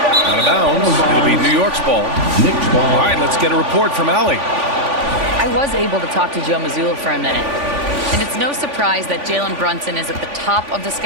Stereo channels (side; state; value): left; late; 3.5 ms